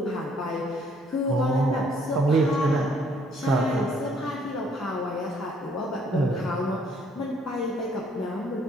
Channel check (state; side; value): normal; both; correlation 0.64